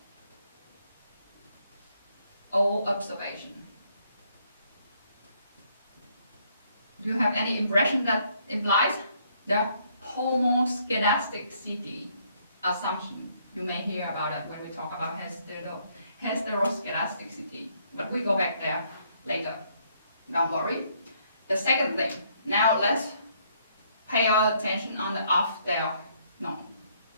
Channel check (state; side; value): inverted; both; correlation -0.69